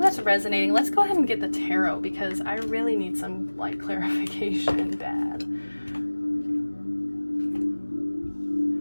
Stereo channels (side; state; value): both; inverted; correlation -1.00